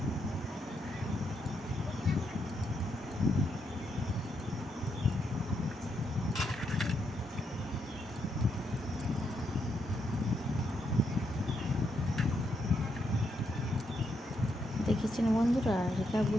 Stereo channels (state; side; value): normal; both; correlation 0.79